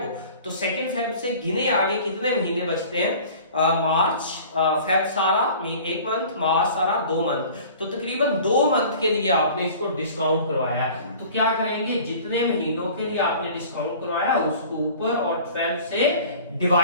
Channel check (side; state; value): both; inverted; correlation -0.45